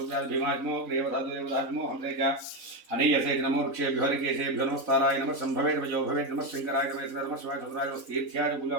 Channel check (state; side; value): late; left; 4.0 ms